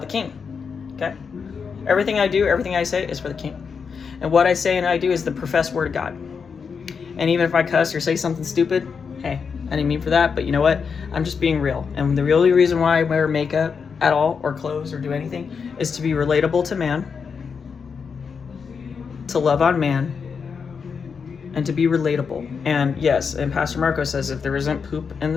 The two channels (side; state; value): right; quieter; 5.9 dB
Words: the King. Okay? Everything I do, everything I say is for the King. And what I say and I do is the professed word of God. And even if I cuss or say something stupid, hey, I didn't mean for that, but you know what? I'm just being real. And the only reason why I wear makeup at all, or clothes, or do anything, is to be relatable to man, to love on man, and to be relatable. And yes, and Pastor Marco says if there isn't poop in